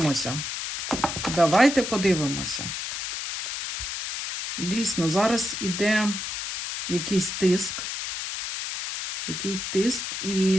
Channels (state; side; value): noise; left; hiss, 5 dB below the sound